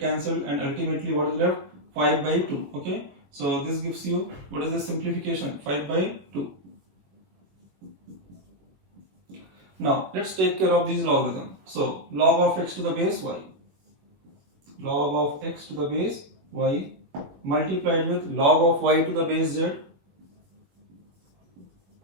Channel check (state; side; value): late; left; 21 ms